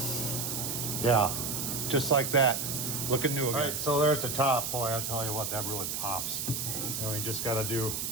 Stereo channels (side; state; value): right; noise; hiss, 2 dB below the sound